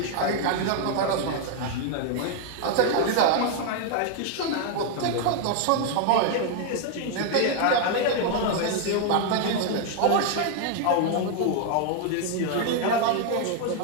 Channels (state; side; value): different; both; correlation 0.00